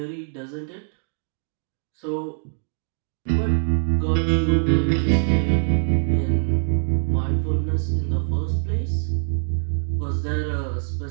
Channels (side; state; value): left; silent; digital silence